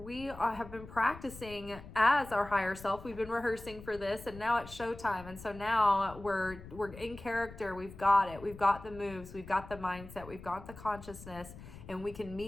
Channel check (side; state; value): left; noise; rumble, 15 dB below the sound